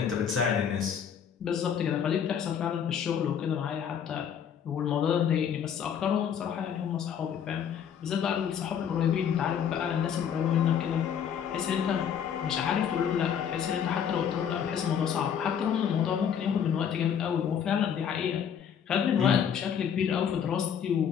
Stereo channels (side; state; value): right; quieter; 8.2 dB